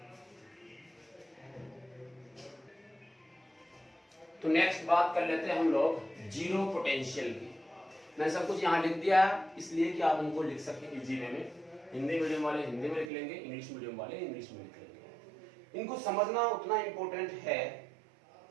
तो नेक्स्ट बात कर लेते हैं हम लोग जीरो पोटेंशियल की। मैंने सब कुछ यहाँ लिख दिया है इसलिए कि आप उनको लिख सकें इजी वे में। हिंदी मीडियम वाले हिंदी में लिख लेंगे, इंग्लिश मीडियम वाले इंग्लिश में लिख लेंगे। इनको समझना उतना इंपॉर्टेंट है,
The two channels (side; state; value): left; drops out; at 13.1 s